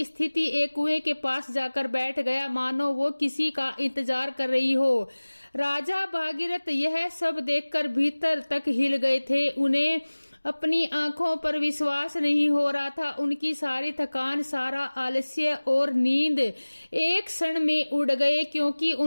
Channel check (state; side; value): inverted; both; correlation -1.00